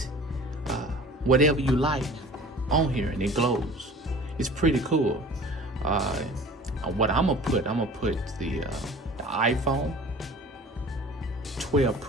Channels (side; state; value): both; normal; correlation 0.44